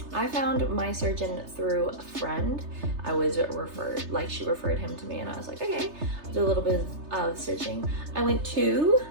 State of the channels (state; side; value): late; left; 3.3 ms